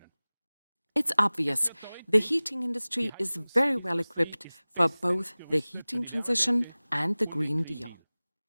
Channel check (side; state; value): both; inverted; correlation -0.99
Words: It's obvious the heating industry is very well equipped for both the heating transition and the Green Deal.